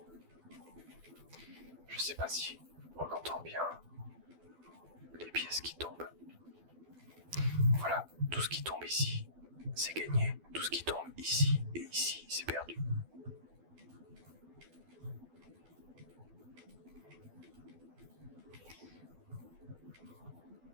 Je sais pas si on entend bien les pièces qui tombent. Voilà, tout ce qui tombe ici, c'est gagné. Tout ce qui tombe ici et ici, c'est perdu.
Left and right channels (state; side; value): late; left; 12 ms